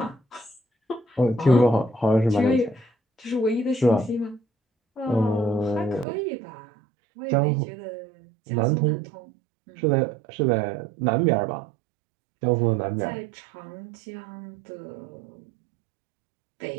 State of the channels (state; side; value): drops out; left; at 6.1 s